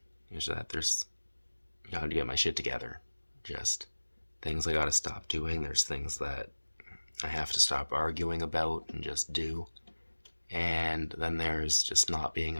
Is that there's, I gotta get my shit together. Just things I gotta stop doing. There's things that I have to stop arguing about and just do. And then there's just not being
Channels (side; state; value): both; inverted; correlation -1.00